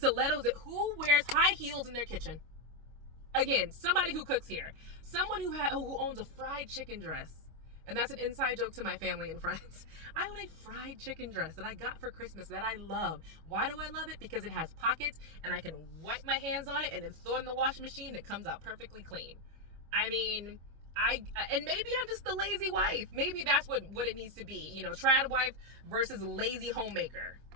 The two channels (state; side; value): late; left; 25 ms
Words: Who wears high heels in their kitchen? Again, somebody who cooks here. Someone who owns a fried chicken dress. And that's an inside joke to my family and friends. I own a fried chicken dress that I got for Christmas that I love. Why do I love it? Because it has pockets and I can wipe my hands on it and then throw it in the washing machine and it comes out perfectly clean. I mean, and maybe I'm just the lazy wife. Maybe that's what it needs to be. Trad wife versus lazy homemaker.